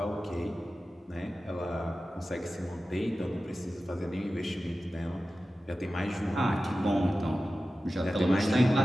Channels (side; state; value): both; normal; correlation 0.94